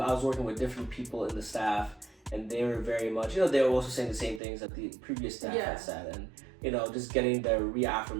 working with different people in the staff, and they were very much, they were also saying the same things that the previous staff had said, and just getting the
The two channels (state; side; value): drops out; left; at 4.4 s